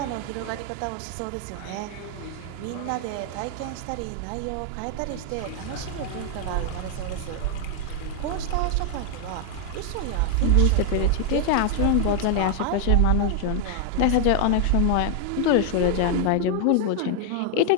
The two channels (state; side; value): different; both; correlation 0.00